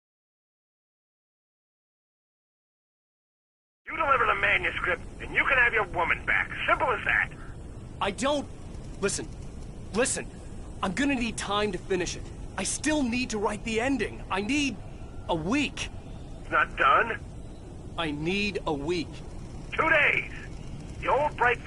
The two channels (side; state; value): both; identical; correlation 1.00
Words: You deliver the manuscript, and you can have your woman back. Simple as that. I don't... Listen. Listen. I'm gonna need time to finish it. I still need to write the ending. I need... a week. It's not done? I need a week. 2 days. The old Bright